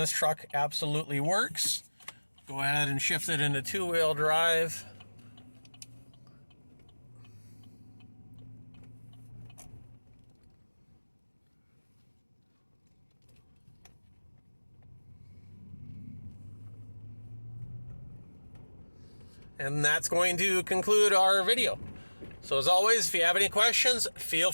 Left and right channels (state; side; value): inverted; both; correlation -1.00